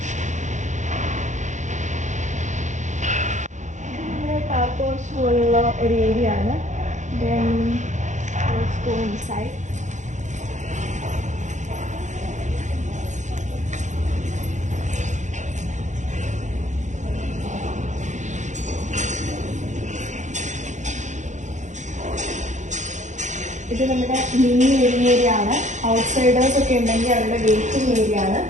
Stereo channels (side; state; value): left; late; 0.35 ms